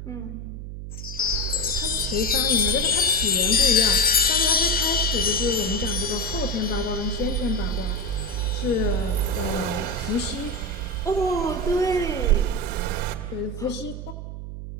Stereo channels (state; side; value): noise; right; hum, 9 dB below the sound